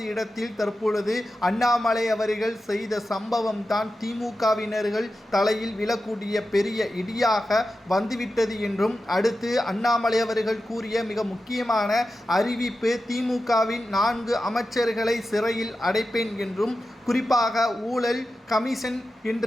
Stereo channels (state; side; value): normal; both; correlation 0.92